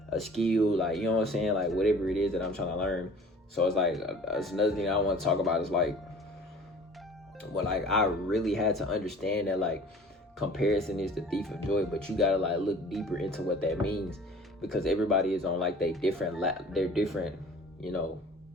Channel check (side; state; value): both; normal; correlation 0.47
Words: a skill, like, what I'm saying? Like, whatever it is that I'm trying to learn. So it's like, that's another thing I want to talk about is like, I really had to understand that like comparison is the thief of joy, but you gotta like look deeper into what that means, because everybody is on like their different